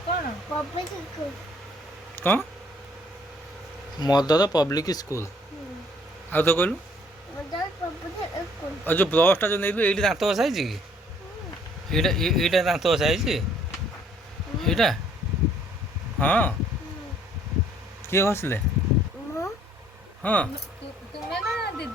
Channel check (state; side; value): normal; both; correlation 0.61